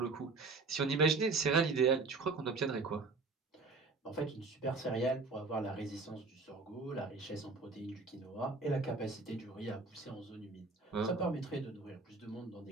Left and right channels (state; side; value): quieter; left; 3.9 dB